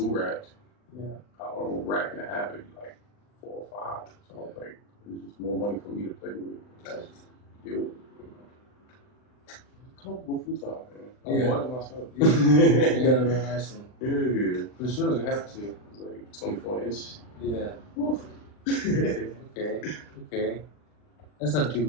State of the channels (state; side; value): late; right; 39 ms